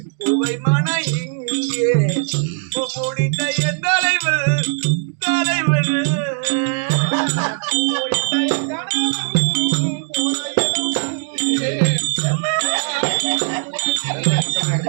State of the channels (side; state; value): left; silent; digital silence